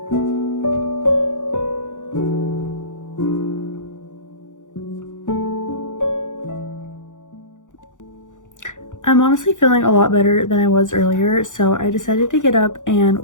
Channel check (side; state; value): right; late; 0.86 ms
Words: I'm honestly feeling a lot better than I was earlier, so I decided to get up and